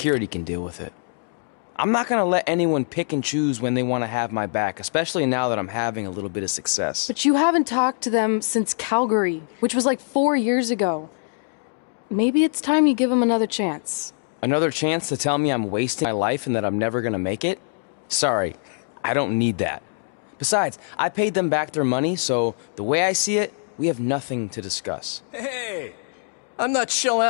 can deal with it. I'm not gonna let anyone pick and choose when they want to have my back, especially now that I'm having a little bit of success. But you haven't talked to them since Calgary, which was like 4 years ago. Maybe it's time you give them another chance. Another chance to tell me I'm wasting my life and that I'm never gonna make it? Sorry, I don't need that. Besides, I paid them back their money, so the way I see it, we have nothing to discuss. Hey, I'm not shelling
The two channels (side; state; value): right; silent; digital silence